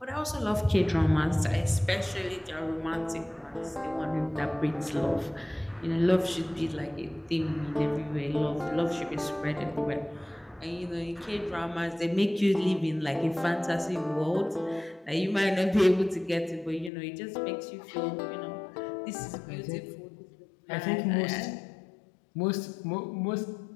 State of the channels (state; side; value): drops out; right; at 16.9 s